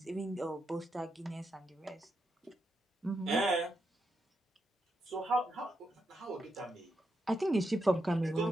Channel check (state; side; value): normal; both; correlation 0.84